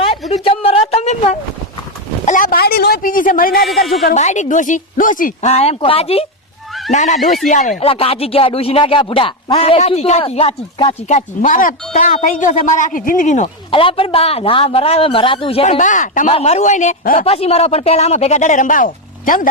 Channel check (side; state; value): both; normal; correlation 0.06